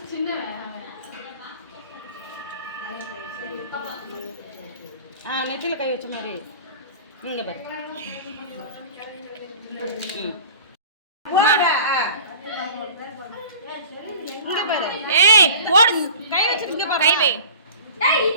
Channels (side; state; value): both; inverted; correlation -0.42